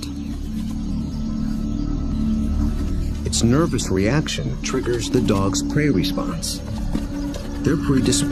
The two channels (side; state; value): both; identical; correlation 1.00